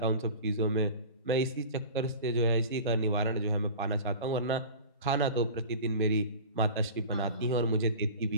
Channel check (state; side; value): inverted; both; correlation -0.37